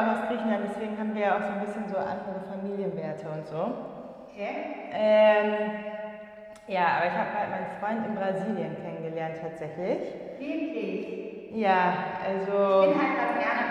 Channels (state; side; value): identical; both; correlation 1.00